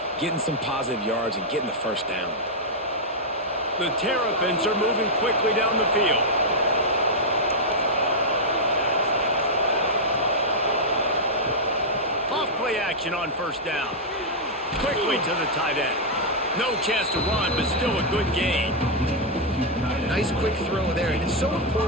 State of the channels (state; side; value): normal; both; correlation -0.04